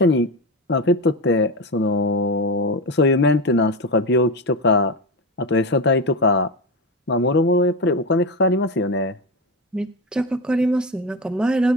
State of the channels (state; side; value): normal; both; correlation 0.18